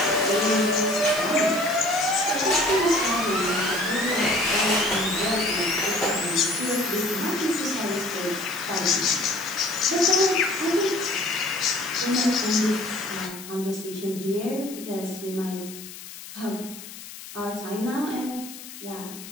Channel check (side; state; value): left; noise; hiss, 14 dB below the sound